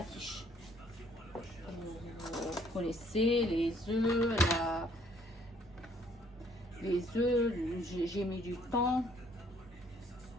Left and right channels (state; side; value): normal; both; correlation 0.63